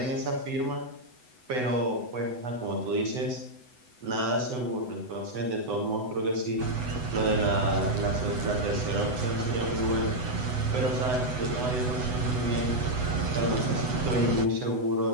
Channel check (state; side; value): late; left; 8.0 ms